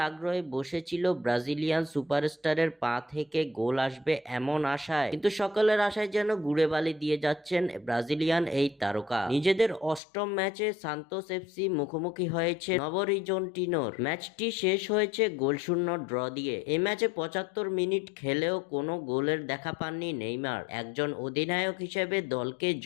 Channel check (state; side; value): drops out; right; at 10.0 s